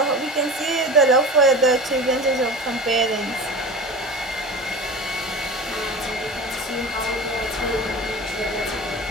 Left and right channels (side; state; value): both; normal; correlation 0.32